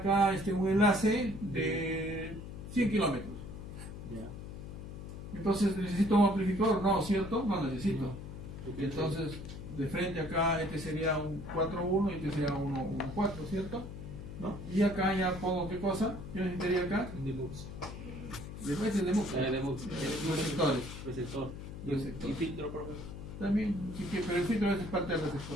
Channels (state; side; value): noise; left; hum, 10 dB below the sound